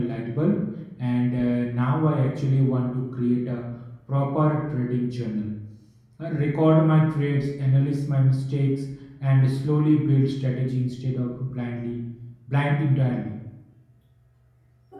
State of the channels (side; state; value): both; identical; correlation 1.00